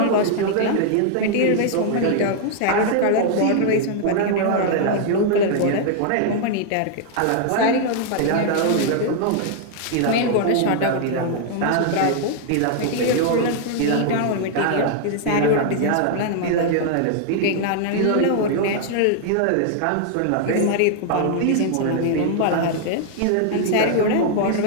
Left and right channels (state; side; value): different; both; correlation 0.00